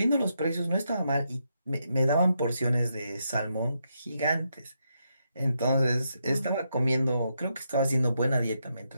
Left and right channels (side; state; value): both; inverted; correlation -0.81